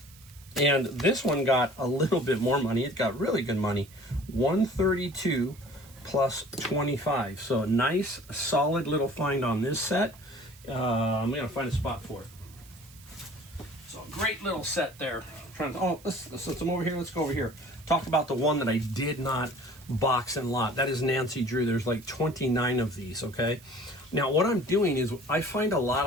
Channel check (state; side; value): noise; right; hiss, 23 dB below the sound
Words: And this one got a little bit more money. It got really good money, 132 plus 25. So a nice, solid little find on this set. I'm gonna find a spot for it. So great little set there. Let's come over here. Let's go over here. Talk about the one that I did not box and lot. That is Nancy Drew. There's like 29 of these, okay? Now what I'm doing is I find a lot